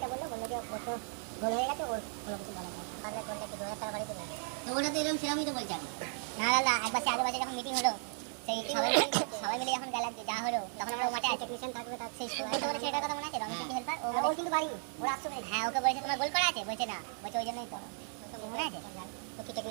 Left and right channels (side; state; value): left; silent; 54 dB below the other